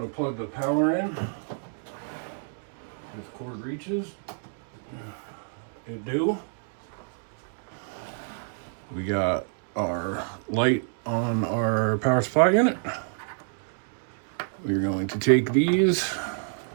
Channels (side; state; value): left; silent; digital silence